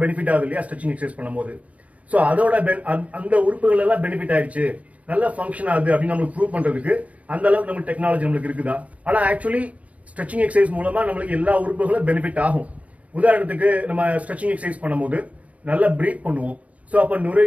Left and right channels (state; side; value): late; left; 0.068 ms